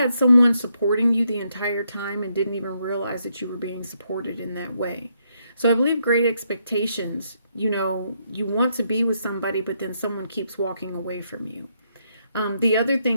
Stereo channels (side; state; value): both; inverted; correlation -0.77